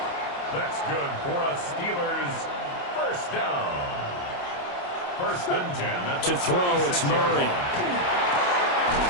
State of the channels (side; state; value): right; late; 28 ms